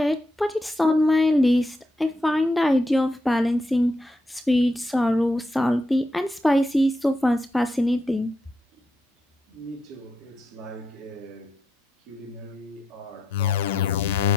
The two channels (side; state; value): both; normal; correlation 0.82